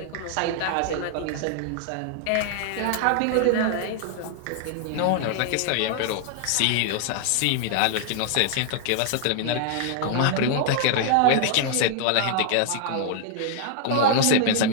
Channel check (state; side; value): different; both; correlation 0.00